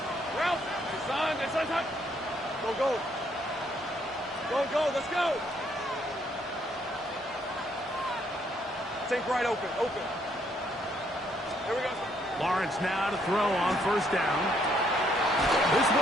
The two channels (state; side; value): normal; both; correlation 0.70